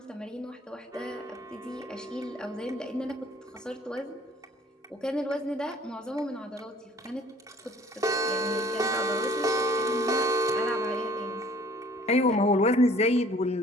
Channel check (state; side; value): normal; both; correlation 0.54